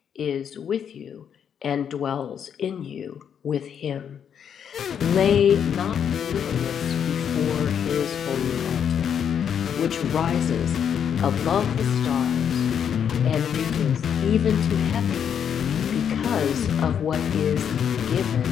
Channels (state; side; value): quieter; right; 8.2 dB